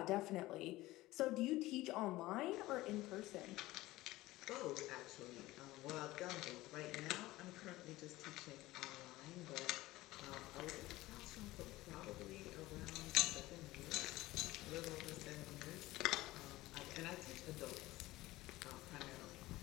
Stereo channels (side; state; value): right; quieter; 18.0 dB